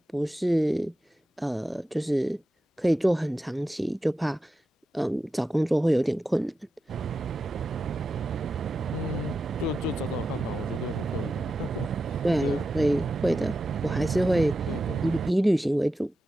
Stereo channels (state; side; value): normal; both; correlation 0.91